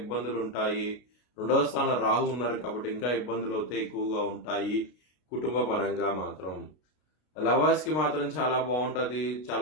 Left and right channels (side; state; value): right; late; 33 ms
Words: ఉంటాయి. 2వ స్థానం రాహు ఉన్నారు కాబట్టి ఇంకా ఇబ్బందులు అయితే ఎక్కువగా ఉంటాయి. కుటుంబ పరంగా మాత్రం లవర్స్ కి మాత్రం చాలా బాగుంటది.